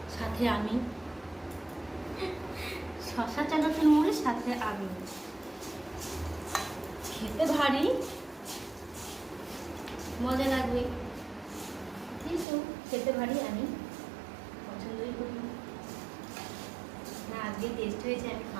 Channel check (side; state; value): left; drops out; at 12.5 s